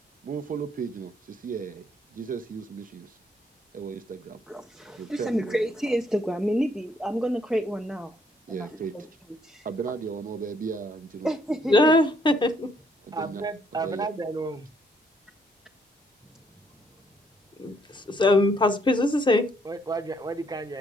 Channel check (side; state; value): both; normal; correlation 0.69